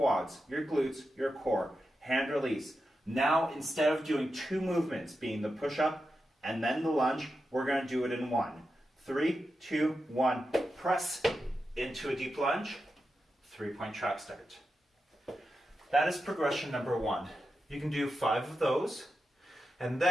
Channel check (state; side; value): normal; both; correlation 0.89